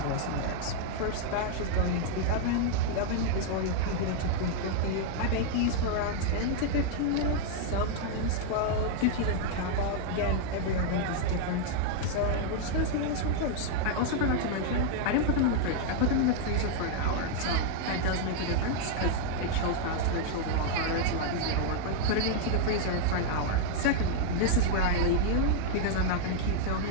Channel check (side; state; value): both; different; correlation -0.01